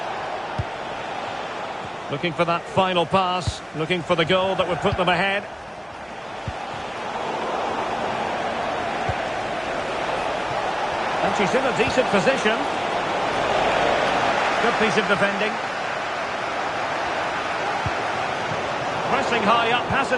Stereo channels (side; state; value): both; identical; correlation 1.00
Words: Looking for that final pass. Looking for the goal that would put them ahead. And she's in a decent position. Good piece of defending. Pressing high up has